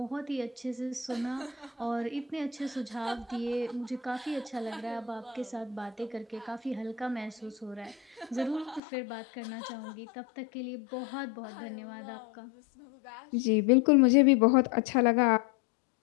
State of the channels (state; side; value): drops out; right; at 8.8 s